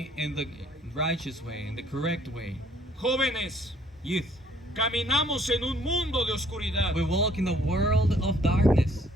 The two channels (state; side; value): normal; both; correlation 0.61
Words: in the righteous way, in the correct way. Jóvenes, Youth, caminamos en un mundo de oscuridad, we walk in the world of darkness,